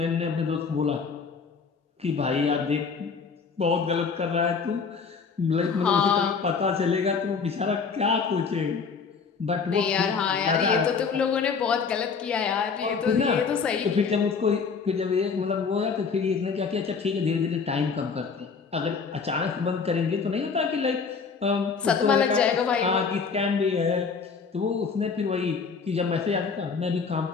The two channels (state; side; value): quieter; right; 5.4 dB